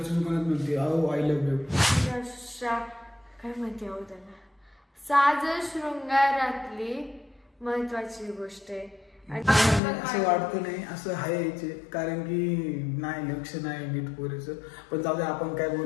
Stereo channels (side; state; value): right; drops out; at 9.8 s